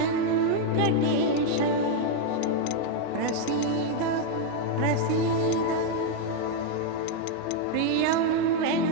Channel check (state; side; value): different; both; correlation 0.01